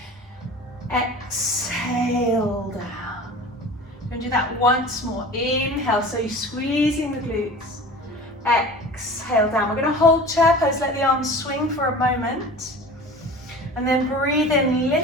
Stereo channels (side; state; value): both; normal; correlation 0.38